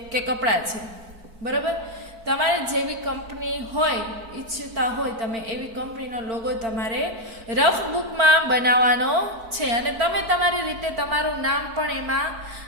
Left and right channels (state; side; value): late; left; 4.4 ms